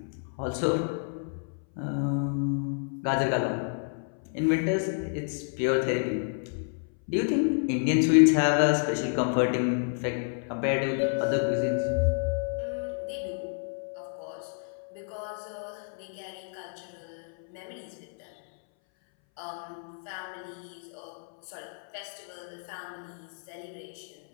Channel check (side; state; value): right; silent; 58 dB below the other